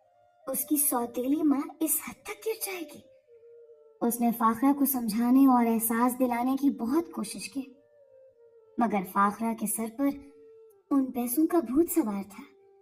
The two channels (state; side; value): identical; both; correlation 1.00